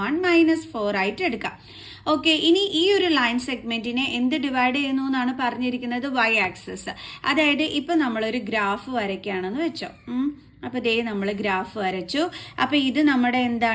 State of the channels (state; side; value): identical; both; correlation 1.00